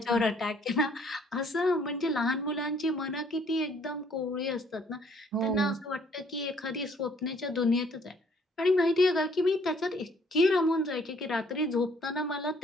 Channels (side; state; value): both; normal; correlation 0.62